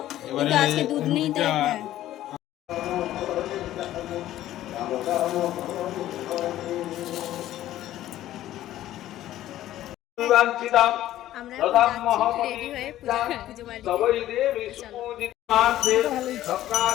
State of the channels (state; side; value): quieter; right; 13.6 dB